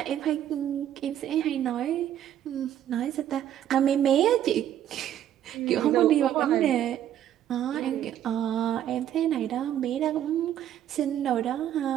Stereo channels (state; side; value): quieter; left; 11.0 dB